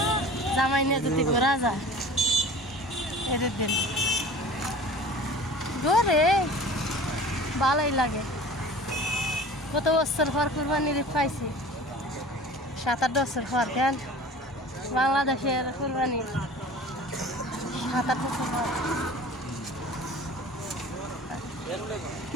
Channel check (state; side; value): normal; both; correlation 0.42